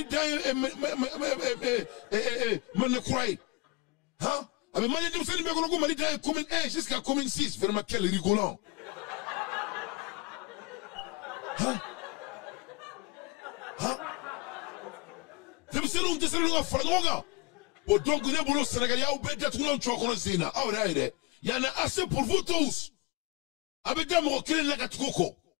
d'Aïb Manekoué. Hein? Avec Malien d'Imselim Bekonoko Mali d'Aïb commune 1 jusqu'à commune 6. Vraiment quel rigolant. Hein? Hein? C'est donc il y en a assez pour vous tous. Avec des mots qui la gatoko.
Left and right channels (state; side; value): quieter; right; 23.6 dB